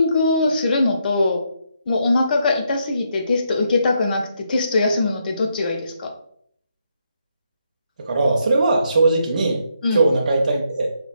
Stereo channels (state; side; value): inverted; both; correlation -0.77